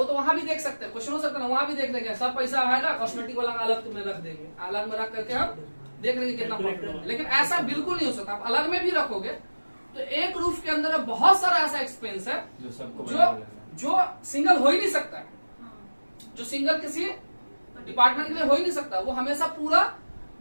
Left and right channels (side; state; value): both; inverted; correlation -1.00